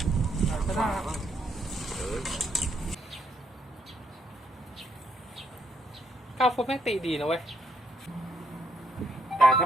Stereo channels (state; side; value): normal; both; correlation 0.74